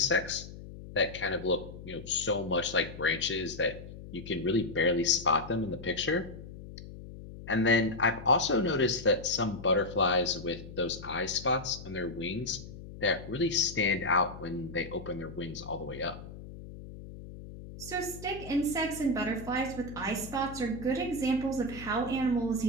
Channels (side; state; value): left; noise; hum, 13 dB below the sound